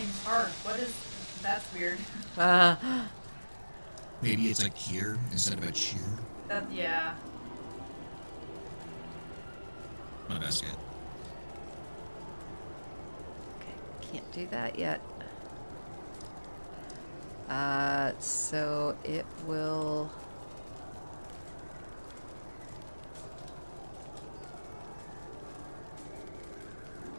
hard. What is... That's weird. Maybe it's like here instead of a cheer. Yeah. My best guess. Okay, can't do that yet. So it will...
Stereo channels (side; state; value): both; inverted; correlation -1.00